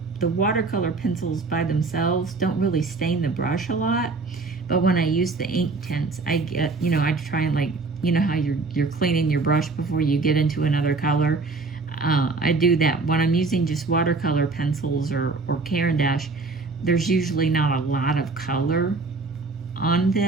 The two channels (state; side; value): quieter; left; 3.8 dB